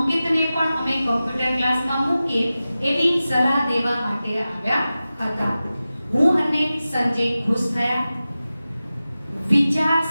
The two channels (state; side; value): inverted; both; correlation -0.95